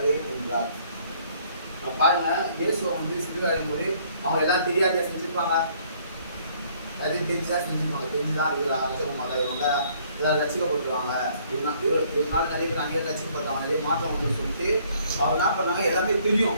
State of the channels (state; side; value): inverted; both; correlation -0.62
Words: என்றார். பாருங்க, இயேசுவை வந்து சிலுவையும் போது அவங்க எல்லாம் தெரியாத செஞ்சிருப்பாங்க, அது தெரிஞ்சுதான் செஞ்சிருப்பாங்க, தெரிஞ்சுதான் இவர் ரசிக்க மாட்டாங்க, இவங்க எல்லாரும் ரசிக்கப்பட்டுருவாங்க, இவனால நிறைய பேர் அங்கேயே ரசிக்கப்பட்டாங்க, நிறைய மாற்றம் வந்து சொல்லிட்டு அவர் என்ன பண்ணாங்க, எல்லாமே